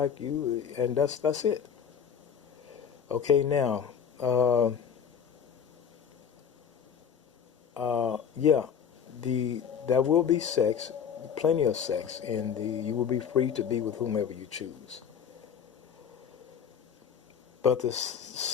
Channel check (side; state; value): right; quieter; 7.6 dB